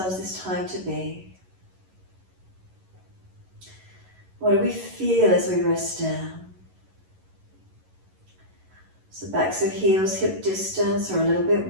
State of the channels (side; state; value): left; late; 11 ms